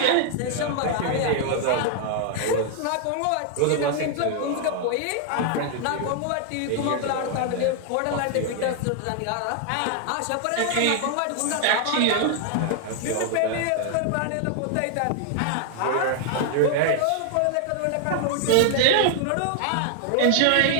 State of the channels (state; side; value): different; both; correlation 0.00